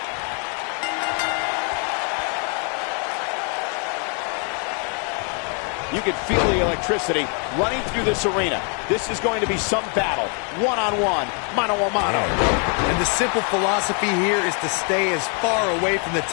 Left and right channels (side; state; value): right; quieter; 39.4 dB